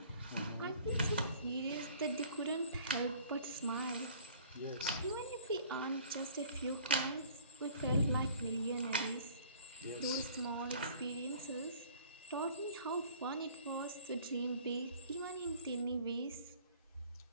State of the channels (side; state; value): both; inverted; correlation -0.51